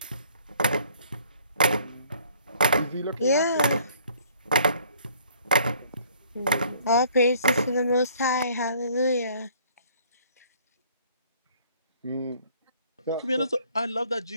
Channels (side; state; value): both; inverted; correlation -0.58